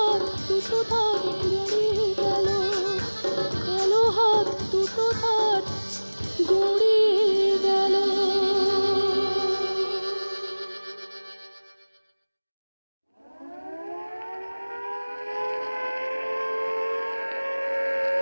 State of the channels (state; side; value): inverted; both; correlation -1.00